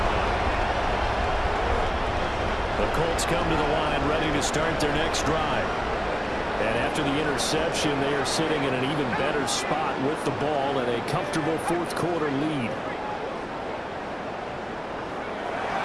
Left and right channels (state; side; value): identical; both; correlation 1.00